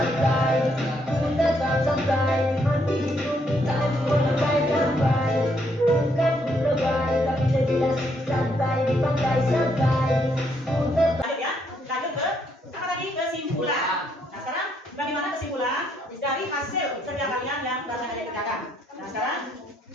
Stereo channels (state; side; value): normal; both; correlation 0.73